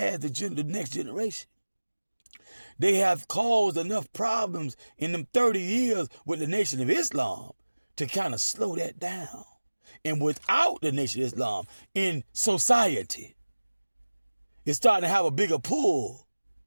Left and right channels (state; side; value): inverted; both; correlation -1.00